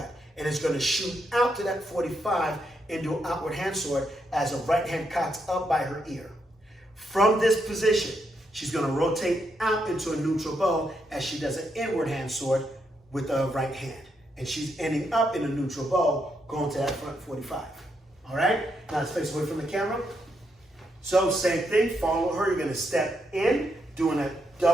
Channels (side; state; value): both; normal; correlation 0.80